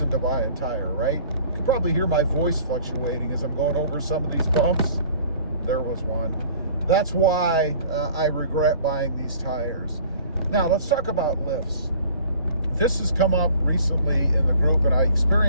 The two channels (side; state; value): both; inverted; correlation -0.50